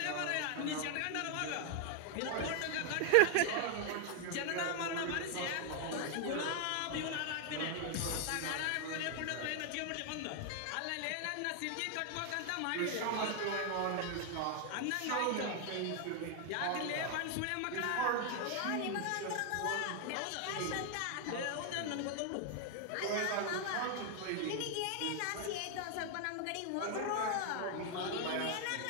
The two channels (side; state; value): both; different; correlation 0.00